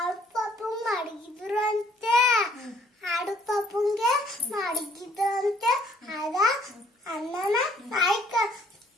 ಪಾಪು ಮಡಗಿದ್ರು ಅಂತೆ ಆಡು ಪಾಪುಂಗೆ ಮಡಗಿದ್ರು ಅಂತೆ ಆಗ ಅನ್ನನ ನಾಯಿ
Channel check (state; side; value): normal; both; correlation 0.62